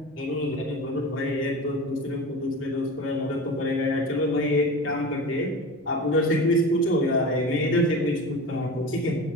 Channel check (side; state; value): both; normal; correlation 0.31